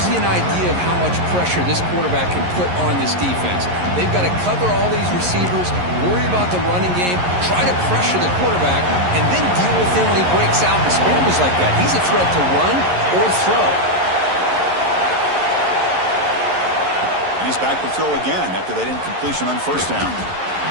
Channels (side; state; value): left; late; 11 ms